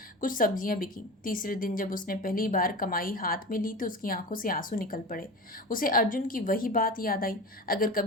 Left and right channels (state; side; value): normal; both; correlation 0.30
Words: कुछ सब्जियां बिकी। तीसरे दिन जब उसने पहली बार कमाई हाथ में ली तो उसकी आंखों से आंसू निकल पड़े। उसे अर्जुन की वही बात याद आई, अगर